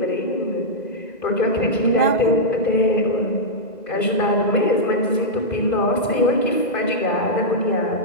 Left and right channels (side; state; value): right; late; 2.0 ms